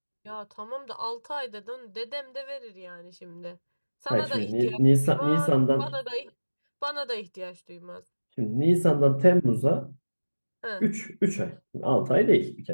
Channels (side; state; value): both; inverted; correlation -1.00